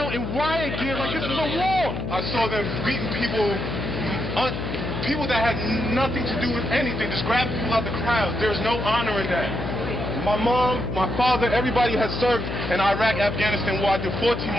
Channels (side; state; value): left; noise; hum, 5 dB below the sound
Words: in riot gear like this is a war. I saw them beating people, people that had nothing to do with anything, just grabbing people out the crowd. There's no honor in that. My mom, my father, everybody has served in Iraq, Afghanistan war. I did 14